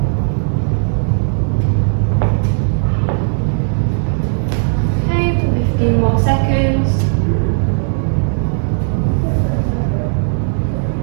Okay, for 15 more seconds.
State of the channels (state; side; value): silent; left; digital silence